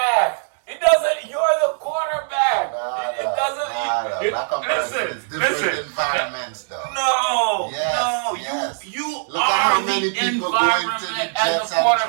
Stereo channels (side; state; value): left; silent; digital silence